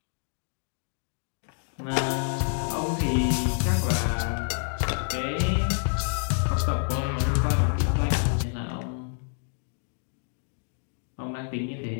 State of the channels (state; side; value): silent; right; digital silence